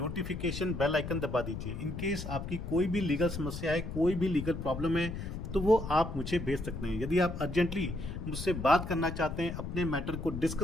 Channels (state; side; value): noise; left; rumble, 7 dB below the sound